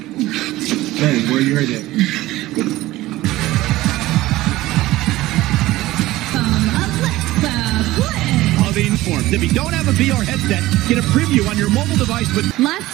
Hey, where you heard it? If you don't have a VR headset, get a preview on your mobile device with... Last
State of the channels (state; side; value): quieter; left; 17.2 dB